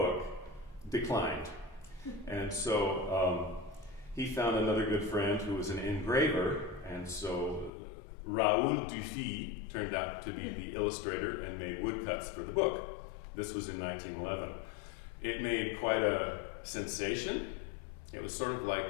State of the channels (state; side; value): drops out; right; at 7.7 s